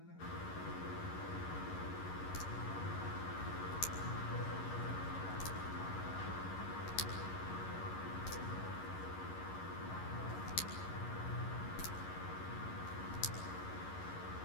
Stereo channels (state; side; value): late; right; 11 ms